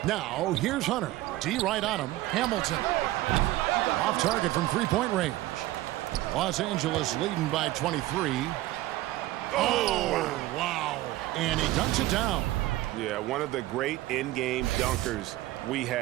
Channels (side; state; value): left; quieter; 16.7 dB